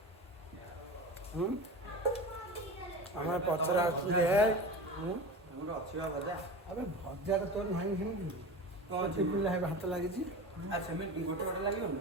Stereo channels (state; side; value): normal; both; correlation 0.30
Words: हमारे पचरा आछे हमर अछिवा भजा अबे भजा तो तोर नाही हिमि कौन चिपिला है हाथ लागि छी अच्छा मैं गोटे गोटे लागि